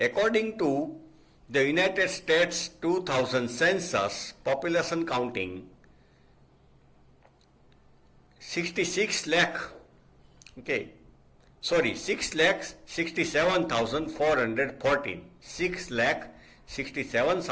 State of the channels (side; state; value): both; identical; correlation 1.00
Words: to the United States 2000 census population counting 66 lakh, okay, sorry, 6,67,414,